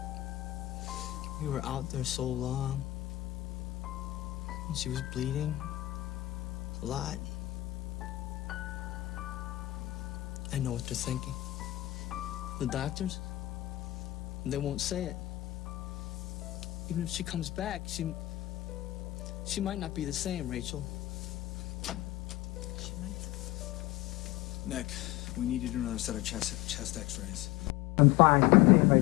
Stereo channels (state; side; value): quieter; right; 17.0 dB